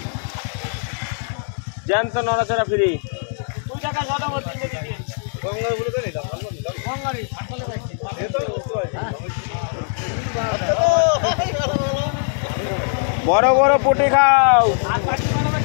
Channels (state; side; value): silent; right; digital silence